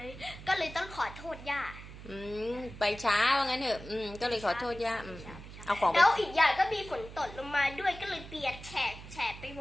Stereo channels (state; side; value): noise; right; hum, 14 dB below the sound